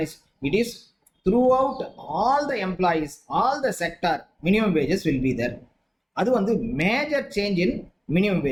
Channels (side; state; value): both; identical; correlation 1.00